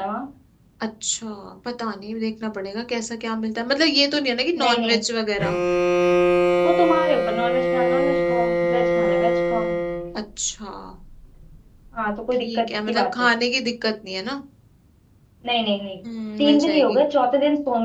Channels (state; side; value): identical; both; correlation 1.00